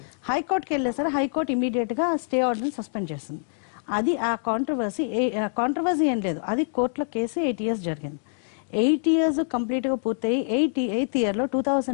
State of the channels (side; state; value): right; silent; digital silence